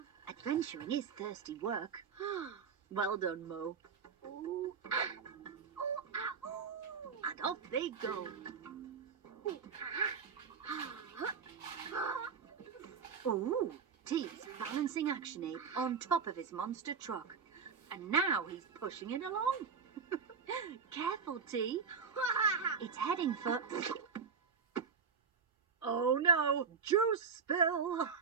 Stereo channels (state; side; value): quieter; left; 6.0 dB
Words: Adventuring is thirsty work. Well done, Mo. And off they go. Oh, T's balancing Action Ape on top of his monster truck. And now he's pushing it along. Careful, T. It's heading for... Oh no, juice spill.